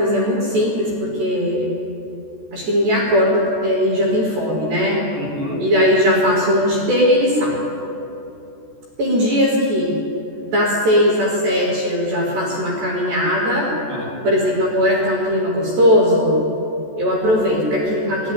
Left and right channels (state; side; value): late; left; 14 ms